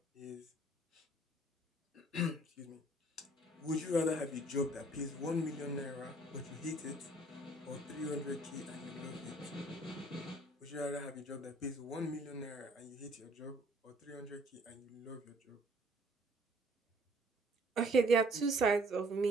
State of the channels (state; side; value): normal; both; correlation 0.59